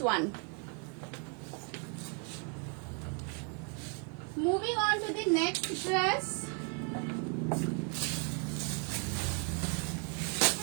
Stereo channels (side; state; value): left; quieter; 37.2 dB